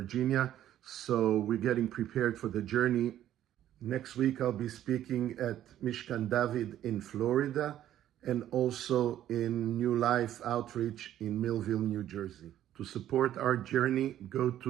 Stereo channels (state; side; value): quieter; left; 12.0 dB